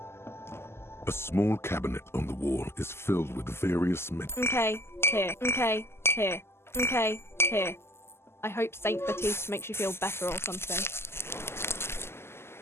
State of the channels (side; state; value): right; late; 0.12 ms